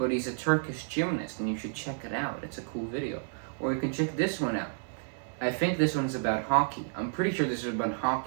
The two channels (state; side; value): silent; left; 57 dB below the other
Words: he's a Turkish gymnast, and you should check it out. It's a cool video. Or you can check this one out. I think this one's about hockey. I'm pretty sure this is about